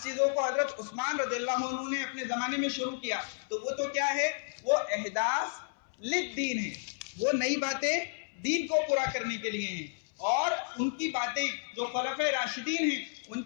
چیزوں کو حضرت عثمان رضی اللہ عنہ نے اپنے زمانے میں شروع کیا, تو وہ تو کیا ہے, وہ احداث للدین ہے, وہ نئی باتیں دین کو پورا کرنے کے لیے ہیں. اور ان کی باتیں جو خلفائے راشدین ہیں ان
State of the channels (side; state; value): right; silent; 56 dB below the other